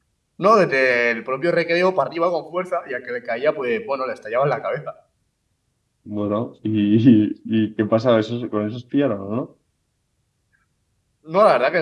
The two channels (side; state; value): both; identical; correlation 1.00